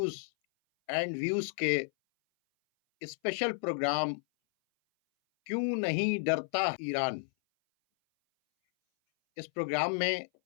एंड व्यूज़ के स्पेशल प्रोग्राम क्यों नहीं डरता ईरान, इस प्रोग्राम में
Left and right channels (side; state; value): right; silent; 57 dB below the other